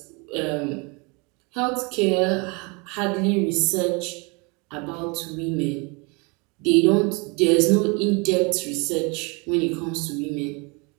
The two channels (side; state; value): left; quieter; 30.1 dB